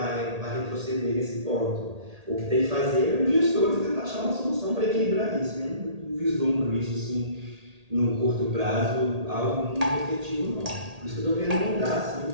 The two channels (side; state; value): left; late; 1.8 ms